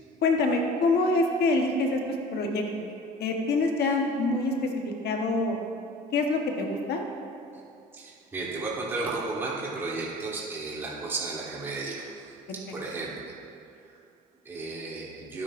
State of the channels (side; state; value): both; normal; correlation 0.42